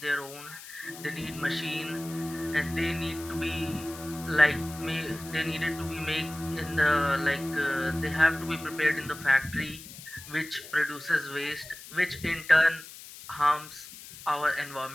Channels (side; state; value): left; noise; hiss, 15 dB below the sound